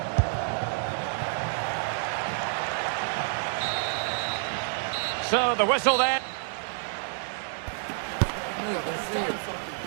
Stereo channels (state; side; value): silent; left; 59 dB below the other